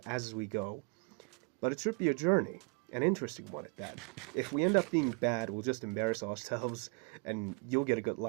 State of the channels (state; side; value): quieter; left; 36.6 dB